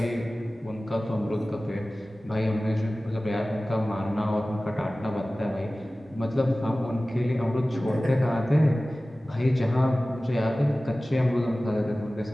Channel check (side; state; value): both; normal; correlation 0.97